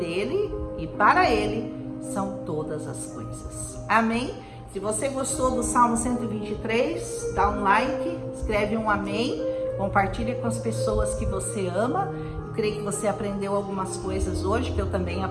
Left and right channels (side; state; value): both; identical; correlation 1.00